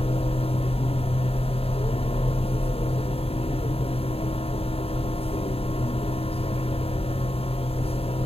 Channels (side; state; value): right; late; 0.28 ms